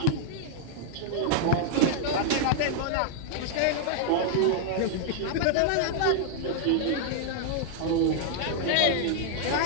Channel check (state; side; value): different; both; correlation 0.00